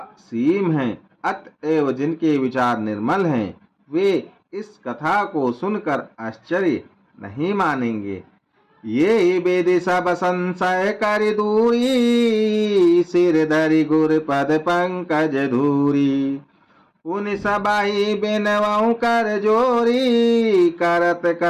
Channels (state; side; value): identical; both; correlation 1.00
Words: है। अतएव जिनके विचार निर्मल हैं वे इस कथा को सुनकर आश्चर्य नहीं मानेंगे। ये वेद सब संशय कर दूरी, सिर धरि गुर पद पंकज धूरी। उन सबाई बिनवऊ कर जोरी, करत